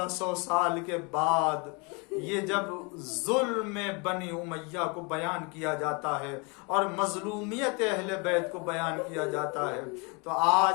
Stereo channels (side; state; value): right; quieter; 31.1 dB